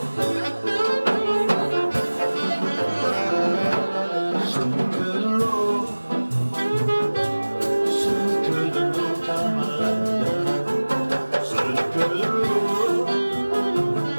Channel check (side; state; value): both; inverted; correlation -1.00